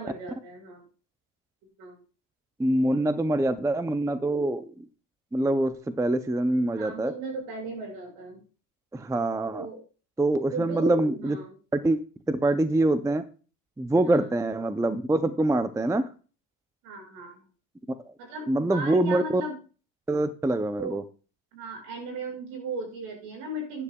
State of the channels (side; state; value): both; normal; correlation 0.83